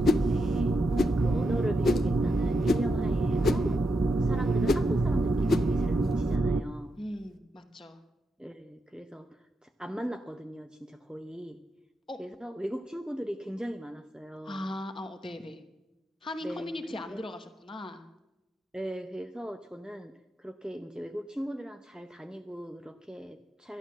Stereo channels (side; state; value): both; normal; correlation 0.84